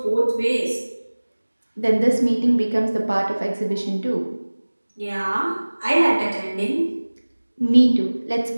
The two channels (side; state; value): both; inverted; correlation -1.00